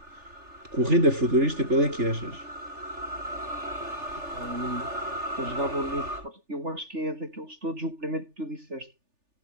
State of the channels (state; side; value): late; left; 3.4 ms